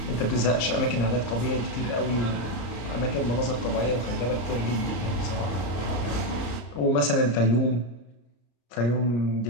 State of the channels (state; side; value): late; right; 34 ms